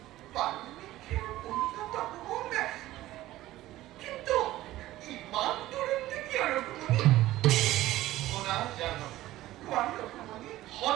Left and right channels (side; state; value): left; quieter; 15.8 dB